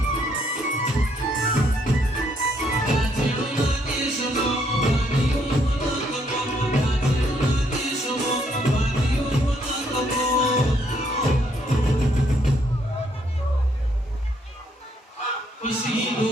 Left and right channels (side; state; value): both; normal; correlation 0.71